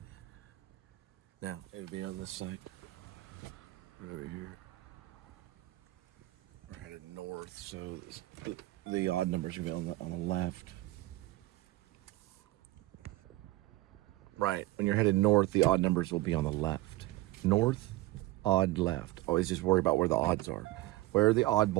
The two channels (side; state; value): left; quieter; 18.1 dB